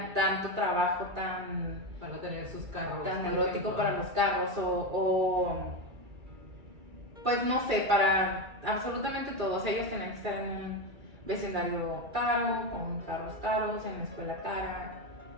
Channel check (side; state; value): left; late; 2.3 ms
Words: trabajo para tener sus carros, tan neurótico para los carros o pues no sé, para absolutamente todos. Ellos tenían que estar en un vecindario caro, con carros caros, en la escuela cara,